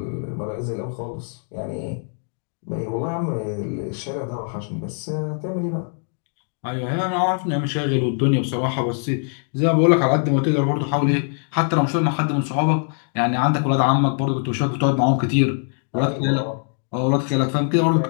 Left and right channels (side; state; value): right; silent; 57 dB below the other